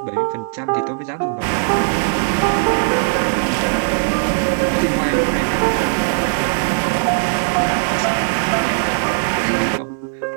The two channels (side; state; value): left; silent; 58 dB below the other